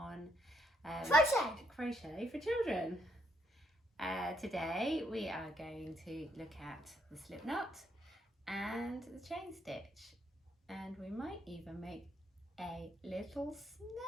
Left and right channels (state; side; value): normal; both; correlation 0.73